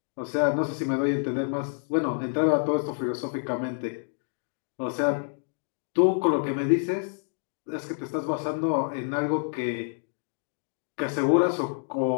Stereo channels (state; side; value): silent; right; digital silence